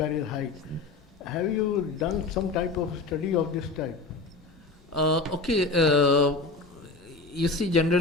height. Have you done some type of study of this type? Okay, you see,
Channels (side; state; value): right; quieter; 3.6 dB